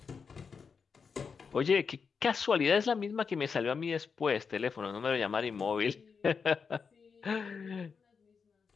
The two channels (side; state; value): right; quieter; 5.7 dB